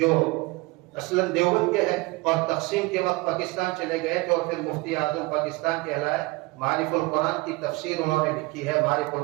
اصلاً دیوبند کے ہیں اور تقسیم کے وقت پاکستان چلے گئے تھے، اور پھر مفتی اعظم پاکستان کہلائے۔ معارف القرآن کی تفسیر انہوں نے لکھی ہے، معارف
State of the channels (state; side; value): quieter; left; 23.9 dB